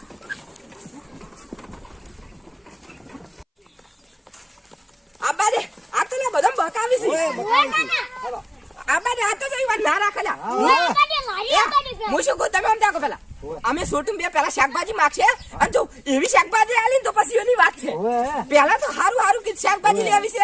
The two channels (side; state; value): both; identical; correlation 1.00